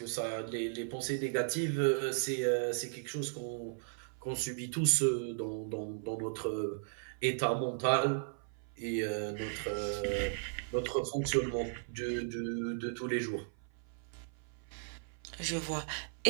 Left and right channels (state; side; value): silent; left; 54 dB below the other